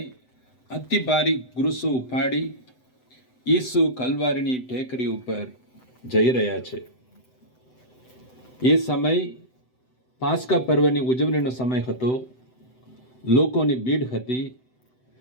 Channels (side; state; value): right; late; 7.9 ms